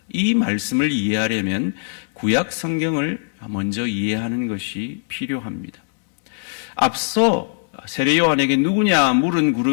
이 말씀을 이해하려면 구약 성경을 먼저 이해하는 것이 필요합니다. 앞서 세례 요한에게 누구냐 물은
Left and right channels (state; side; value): silent; right; 64 dB below the other